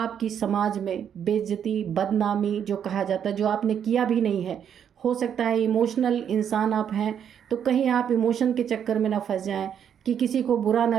समाज में बेइज्जती, बदनामी जो कहा जाता है, जो आपने किया भी नहीं है। हो सकता है इमोशनल इंसान आप हैं, तो कहीं आप इमोशन के चक्कर में ना फंस जाएं कि किसी को बुरा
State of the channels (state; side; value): quieter; left; 8.6 dB